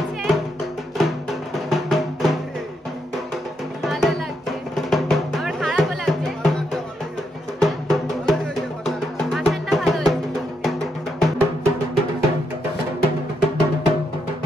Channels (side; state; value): both; normal; correlation 0.80